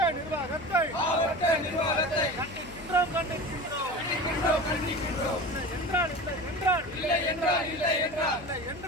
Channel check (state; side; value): noise; left; hum, 15 dB below the sound